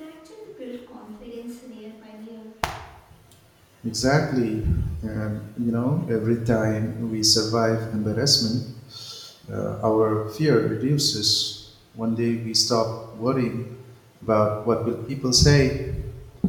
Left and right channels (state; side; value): identical; both; correlation 1.00